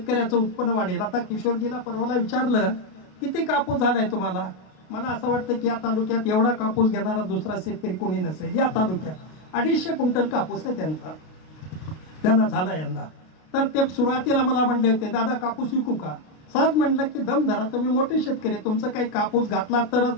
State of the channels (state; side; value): late; right; 33 ms